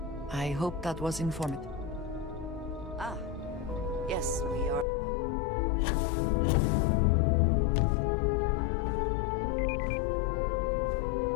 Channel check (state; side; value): drops out; right; at 4.9 s